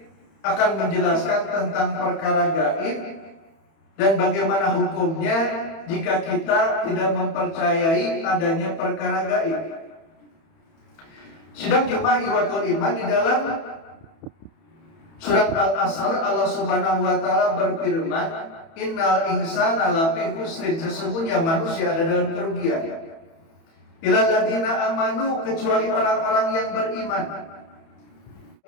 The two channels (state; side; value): late; right; 31 ms